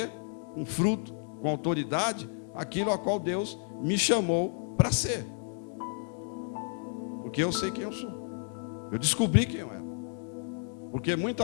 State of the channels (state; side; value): silent; right; 56 dB below the other